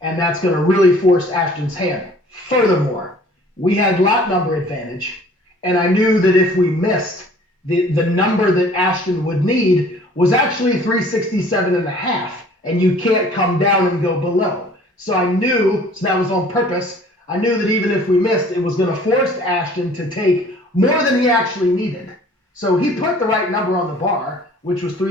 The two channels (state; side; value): normal; both; correlation 0.52